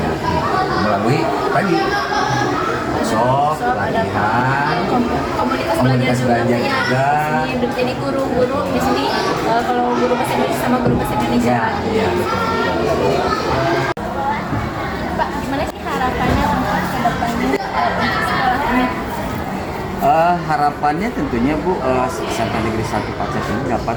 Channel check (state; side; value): identical; both; correlation 1.00